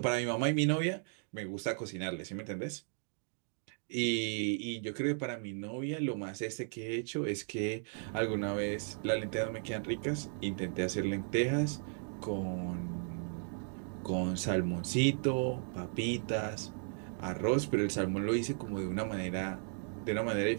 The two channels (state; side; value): silent; left; 54 dB below the other